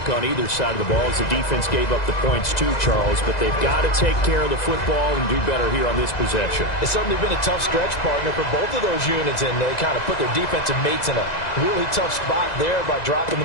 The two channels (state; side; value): late; right; 2.0 ms